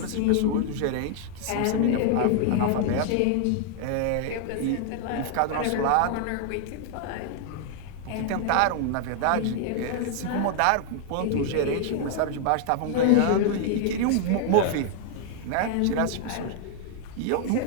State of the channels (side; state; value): both; different; correlation 0.00